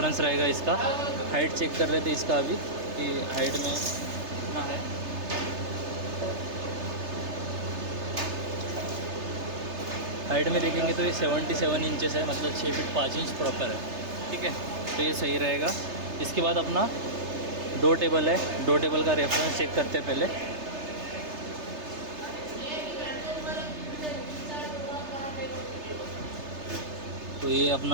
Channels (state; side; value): late; left; 3.3 ms